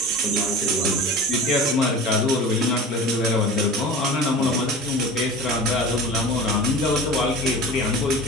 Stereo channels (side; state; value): both; normal; correlation 0.36